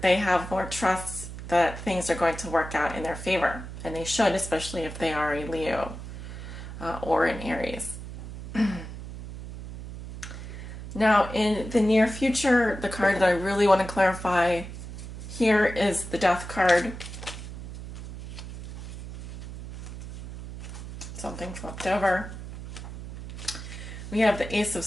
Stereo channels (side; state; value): right; noise; hum, 10 dB below the sound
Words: They have more trust that things are going to work out in their favor. And they should, especially if they are a Leo or an Aries. Now, in the near future, the card that I really want to clarify here is the Death card. Something flipped over. We have the Ace of